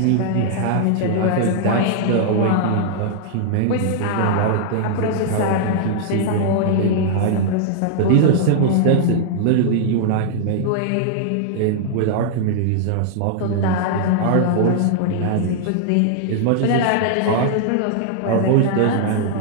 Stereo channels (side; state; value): both; different; correlation -0.01